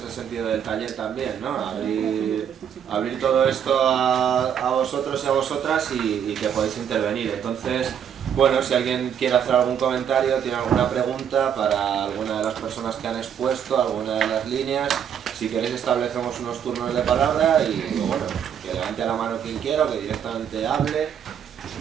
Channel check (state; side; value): quieter; left; 8.5 dB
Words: el sentido del taller también, ¿no? Abrir todo esto a vosotros y a vosotras y que podéis intervenir. Entonces, bueno, si alguien quiere hacer algún comentario, tiene alguna pregunta para alguna de las personas que han expuesto, alguna de las líneas, si queréis establecemos unos turnos de palabra y bueno, que levante la mano quien quiera o que directamente hable,